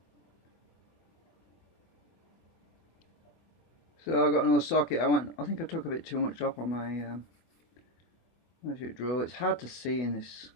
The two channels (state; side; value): late; right; 24 ms